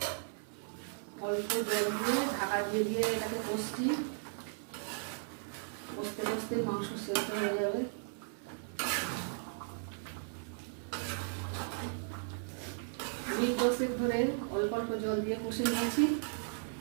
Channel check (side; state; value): left; silent; digital silence